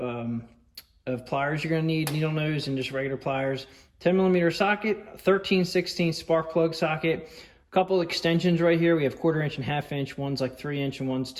pliers you're going to need, needle nose and just regular pliers. 10mm socket, 13/16 spark plug socket. A couple extensions right here. We have 1/4-inch and 1/2 inch. One's like 3-inch and one's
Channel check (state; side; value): identical; both; correlation 1.00